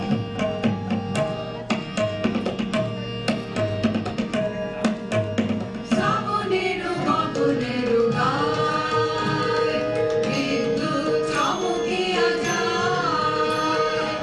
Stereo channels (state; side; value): identical; both; correlation 1.00